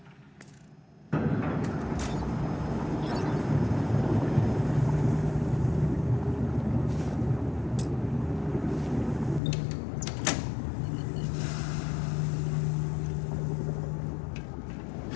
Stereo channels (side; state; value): right; drops out; at 9.4 s